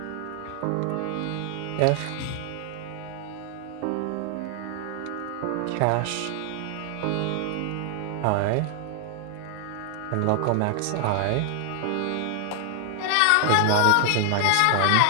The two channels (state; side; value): different; both; correlation 0.00